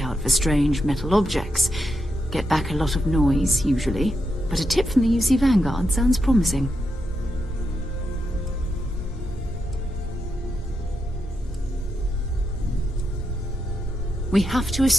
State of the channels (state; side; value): normal; both; correlation 0.84